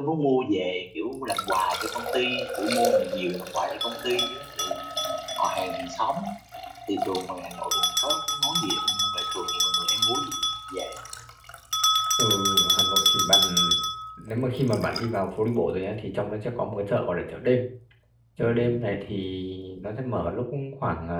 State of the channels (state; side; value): identical; both; correlation 1.00